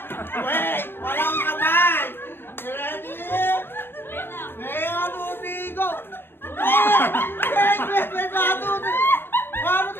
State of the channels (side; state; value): right; late; 0.10 ms